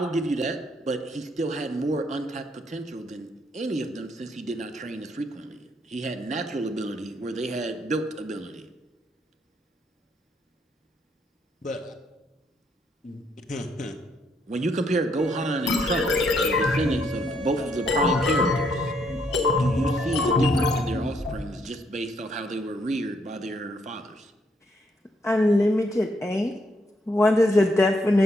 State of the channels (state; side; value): normal; both; correlation 0.73